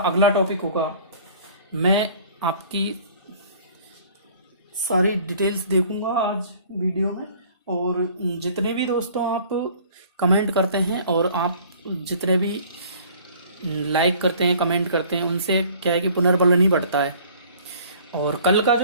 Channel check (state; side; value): inverted; both; correlation -0.52